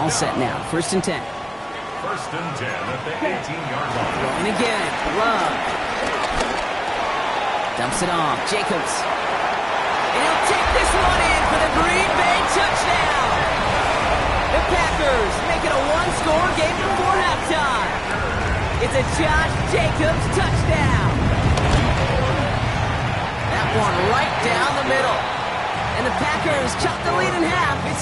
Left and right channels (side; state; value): both; identical; correlation 1.00